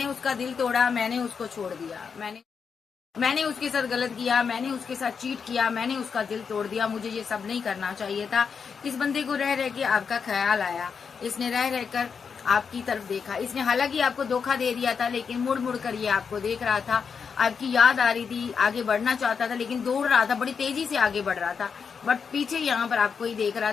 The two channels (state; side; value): quieter; right; 6.1 dB